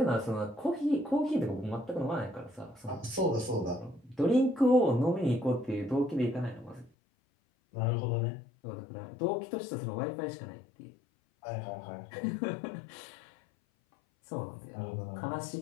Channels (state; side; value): drops out; right; at 6.9 s